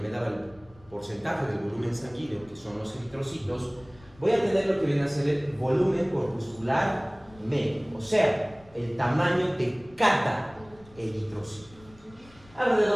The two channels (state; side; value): noise; left; rumble, 25 dB below the sound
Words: me daba el porcentaje del volumen sanguíneo, que son los eritrocitos, voy a tener lo que viene a ser el volumen corpuscular medio, o sea, el tamaño de cada eritrocito.